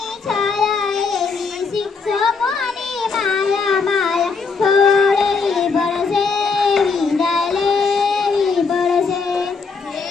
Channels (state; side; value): quieter; right; 4.9 dB